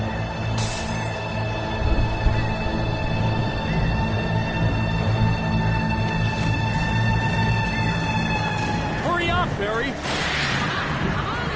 Hurry up, Barry!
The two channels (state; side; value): identical; both; correlation 1.00